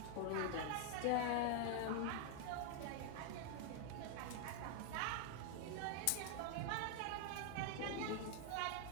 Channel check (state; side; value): different; both; correlation 0.00